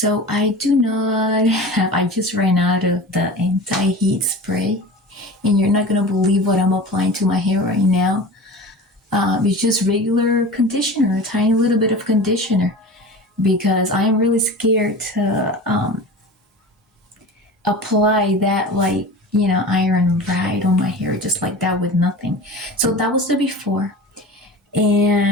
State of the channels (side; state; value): both; normal; correlation 0.34